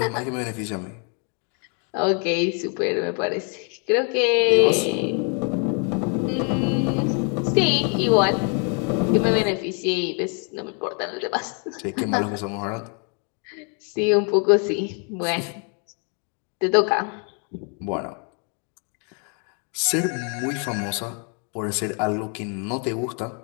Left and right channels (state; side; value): quieter; right; 38.6 dB